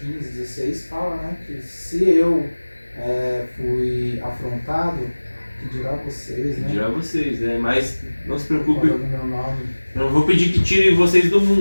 16 fala, né? Que se eu fui afrontado, que dirá vocês, né? Dirá vocês, né? Mas não se preocupe. Falando meu nome. Eu não vou pedir que tire vocês do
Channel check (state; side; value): inverted; both; correlation -1.00